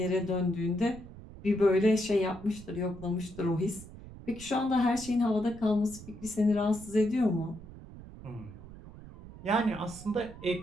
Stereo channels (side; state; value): right; noise; rumble, 16 dB below the sound